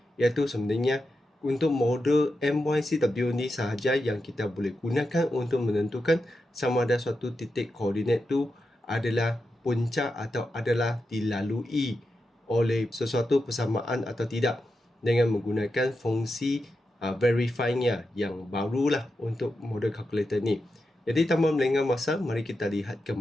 iaitu sebenarnya untuk model MYCW ni sahaja yang kita boleh gunakan untuk menentukan sama ada suatu titik koordinat tu adalah punca atau adalah dilalui oleh sesuatu persamaan atau tidak dengan menggunakan fungsi verifyingnya yang barulah untuk model kalkulator ni. Jadi tanpa melengah masa, mari kita lihat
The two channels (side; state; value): both; normal; correlation 0.88